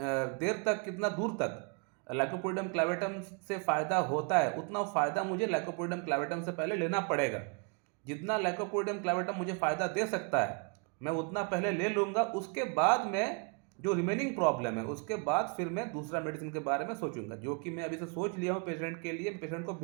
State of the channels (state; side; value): quieter; left; 36.5 dB